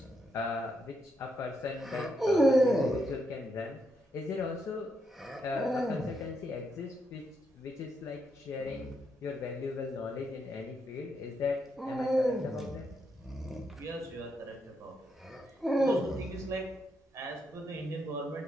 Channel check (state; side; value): normal; both; correlation 0.80